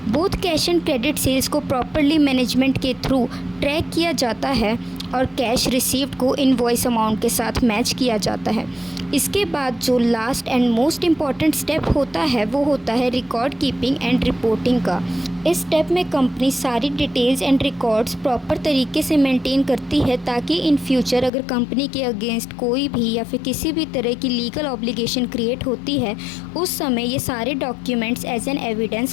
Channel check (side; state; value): right; drops out; at 21.3 s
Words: Both cash and credit sales को प्रॉपरली मैनेजमेंट के थ्रू ट्रैक किया जाता है और कैश रिसीव्ड को इनवॉइस अमाउंट के साथ मैच किया जाता है. इसके बाद जो last and most important step होता है वो होता है रिकॉर्ड कीपिंग एंड रिपोर्टिंग का. इस स्टेप में कंपनी सारी डिटेल्स एंड रिकॉर्ड्स प्रॉपर तरीके से मेंटेन करती है ताकि इन फ्यूचर अगर कंपनी के अगेंस्ट कोई भी या फिर किसी भी तरह की लीगल ऑब्लिगेशन क्रिएट होती है उस समय ये सारे डॉक्यूमेंट्स एज एन एविडेंस